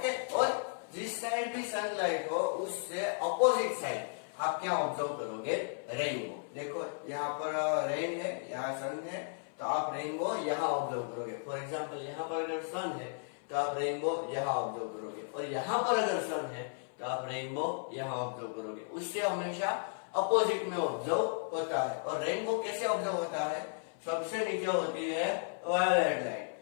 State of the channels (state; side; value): silent; right; 55 dB below the other